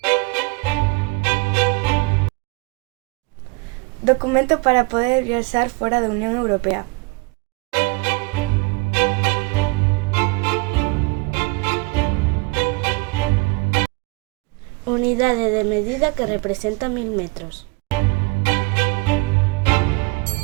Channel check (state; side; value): quieter; left; 27.1 dB